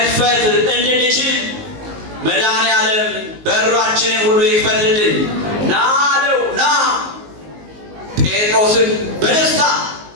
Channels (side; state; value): left; late; 19 ms